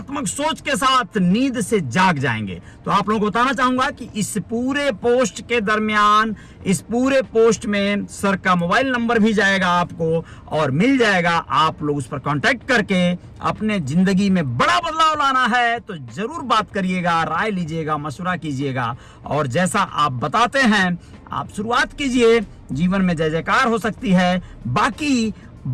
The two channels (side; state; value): both; identical; correlation 1.00